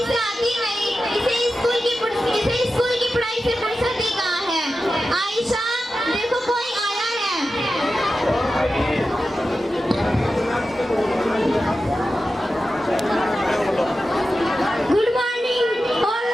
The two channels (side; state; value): both; normal; correlation 0.92